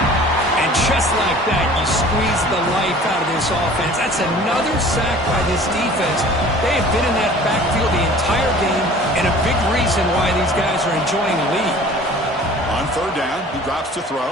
And just like that, you squeeze the life out of this offense. That's another sack by this defense. They have been in that backfield the entire game, and a big reason why these guys are enjoying a lead. On third down, he drops to throw.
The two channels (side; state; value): both; normal; correlation 0.46